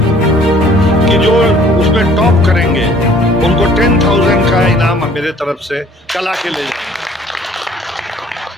कि जो उसमें टॉप करेंगे उनको 10,000 का इनाम मेरे तरफ से कला के ले जाएंगे,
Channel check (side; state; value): both; normal; correlation 0.56